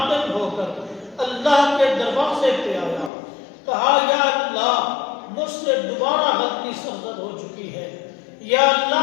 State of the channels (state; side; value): drops out; right; at 3.1 s